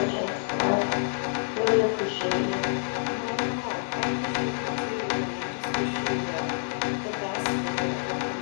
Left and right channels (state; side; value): silent; right; digital silence